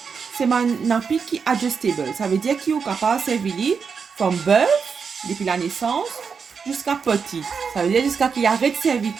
c'est un nappy qui est adjustable. Ça veut dire qu'il est capable de servir from birth, depuis la naissance, jusqu'à petit. Ça veut dire jusqu'à qu'il arrête de servir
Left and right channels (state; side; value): quieter; left; 5.9 dB